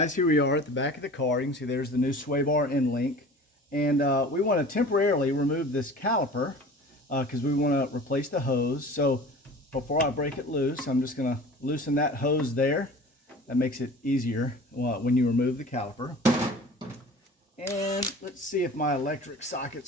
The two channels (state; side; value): normal; both; correlation 0.41